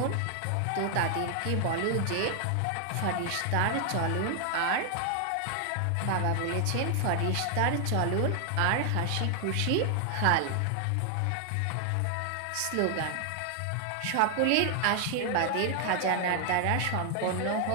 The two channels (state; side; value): different; both; correlation 0.00